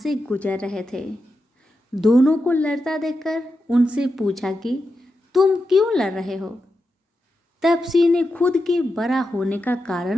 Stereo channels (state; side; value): normal; both; correlation 0.89